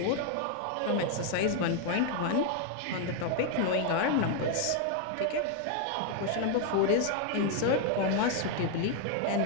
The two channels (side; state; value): both; different; correlation 0.00